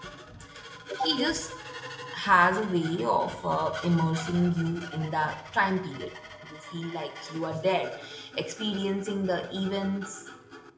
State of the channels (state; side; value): identical; both; correlation 1.00